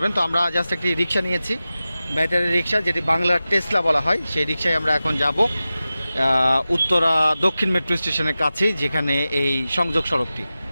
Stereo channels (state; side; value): inverted; both; correlation -0.95